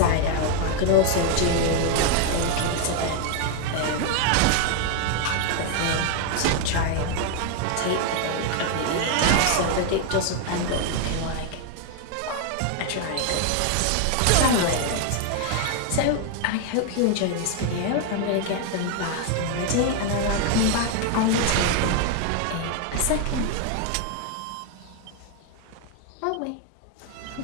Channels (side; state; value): both; different; correlation 0.01